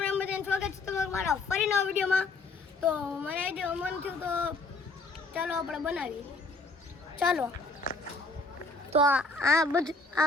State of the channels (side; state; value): right; quieter; 3.3 dB